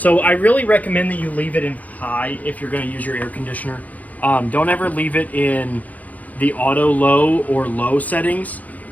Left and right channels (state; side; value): late; right; 0.077 ms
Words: I really recommend that you leave it in high if you're gonna use your air conditioner. Don't ever leave it in the auto low or low settings,